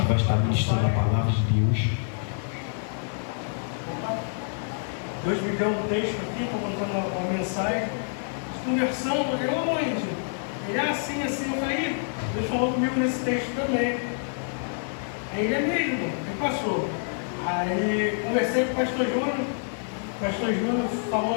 vai estar ministrando a palavra de Deus. Deus me deu um texto aqui, estou mandando uma mensagem, conversando, eu aonde? Ele é assim, eu falei, Deus falou comigo nesse texto também. Aí ele é mesmo, ele passou. Aí conversei com o pastor Júnior,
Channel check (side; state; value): right; silent; 60 dB below the other